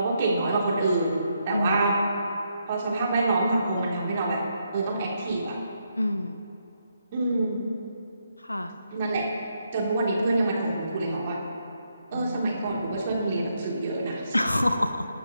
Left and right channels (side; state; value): both; inverted; correlation -0.78